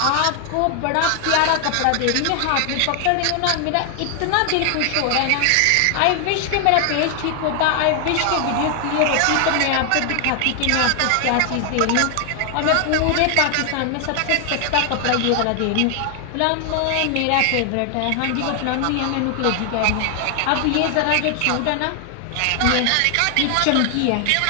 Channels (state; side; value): different; both; correlation 0.00